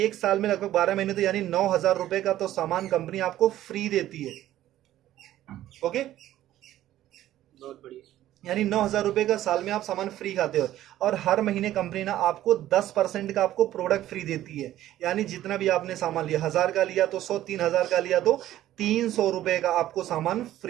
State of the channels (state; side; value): quieter; left; 13.5 dB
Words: एक साल में लगभग 12 महीने, तो यानी 9,000 रुपए का तो सामान कंपनी आपको फ्री देती है। ओके। बहुत बढ़िया। यानी 9,000 रुपए का साल में आप सामान फ्री खाते हो। और हर महीने कंपनी ना आपको 10% का आपको प्रोडक्ट फ्री देती है। यानी जितना भी आपने सामान लिया, 1,000 का लिया तो 100, 3,000 का लिया तो 300 रुपए का आपको सामान